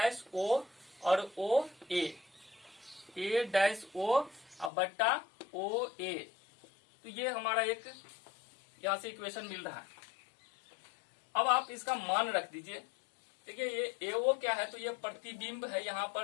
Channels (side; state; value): right; drops out; at 4.7 s